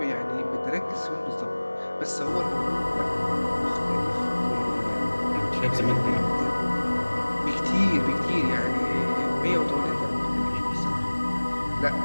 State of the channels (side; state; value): both; inverted; correlation -1.00